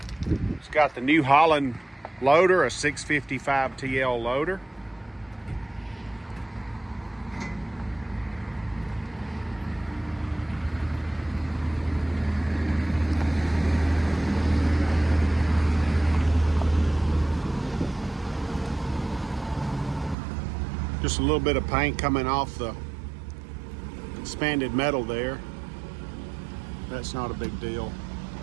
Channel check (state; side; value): drops out; left; at 20.2 s